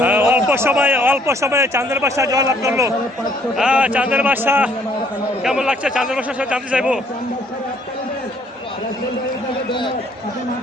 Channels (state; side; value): normal; both; correlation 0.64